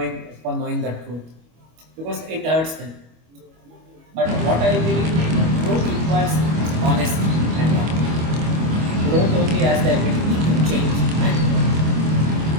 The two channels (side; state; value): left; late; 25 ms